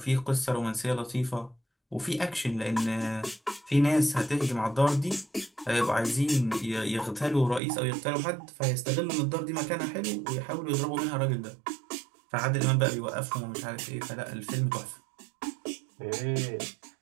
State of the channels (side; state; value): left; drops out; at 7.6 s